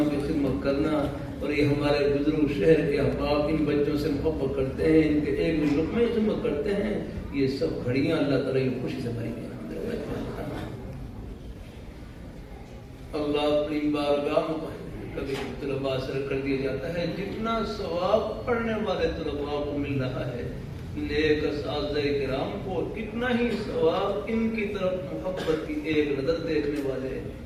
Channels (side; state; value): both; identical; correlation 1.00